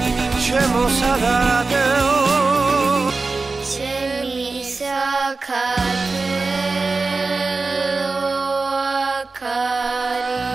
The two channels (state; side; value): quieter; left; 3.9 dB